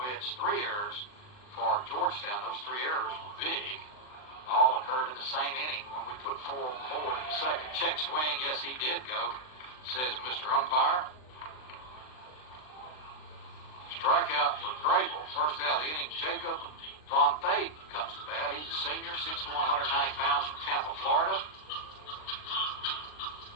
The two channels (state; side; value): late; right; 39 ms